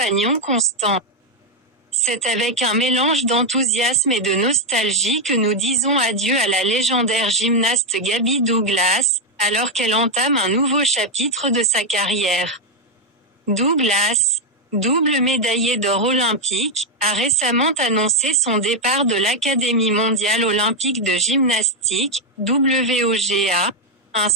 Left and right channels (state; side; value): normal; both; correlation 0.02